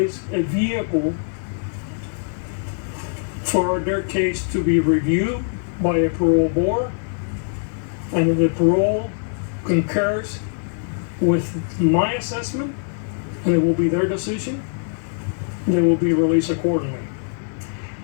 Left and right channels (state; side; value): silent; right; 62 dB below the other